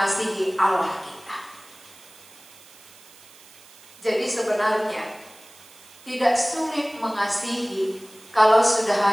Allah kita. Jadi sebenarnya tidak sulit mengasihi kalau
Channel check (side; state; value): right; noise; hiss, 23 dB below the sound